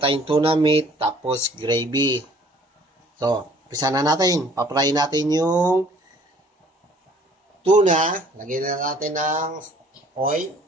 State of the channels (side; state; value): both; normal; correlation 0.56